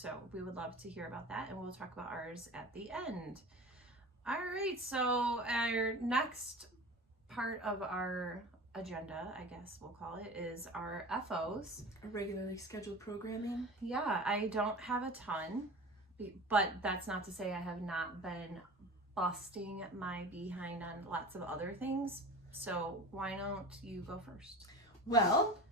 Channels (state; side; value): normal; both; correlation 0.35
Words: we would love to hear about that, and we'll talk about ours at the end. All right, so our next part of our agenda, I guess we'll call it, is our FOs. Regularly scheduled programming. Yeah, I don't have a ton, but that's not to say I have not been busting my behind on lots of other things. So why don't you go first? Well,